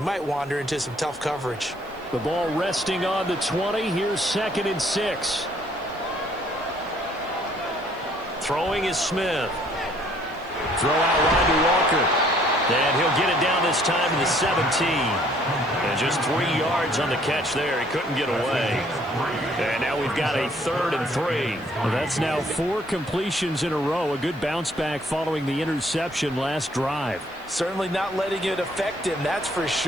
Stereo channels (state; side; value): noise; right; hiss, 28 dB below the sound